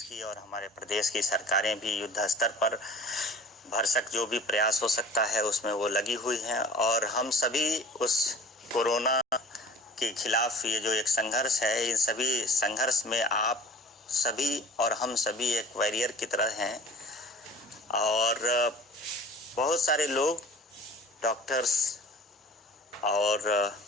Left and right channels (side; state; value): both; normal; correlation 0.44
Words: की और हमारे प्रदेश की सरकारें भी युद्ध स्तर पर भरसक जो भी प्रयास हो सकता है उसमें वो लगी हुई हैं। और हम सभी उस कोरोना के खिलाफ ये जो एक संघर्ष है, इन सभी संघर्ष में आप सभी और हम सभी एक वॉरियर की तरह हैं। और बहुत सारे लोग, डॉक्टर्स और